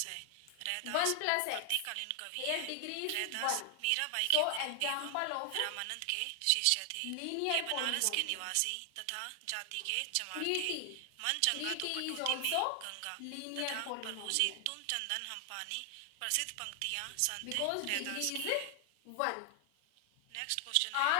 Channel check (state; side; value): different; both; correlation 0.00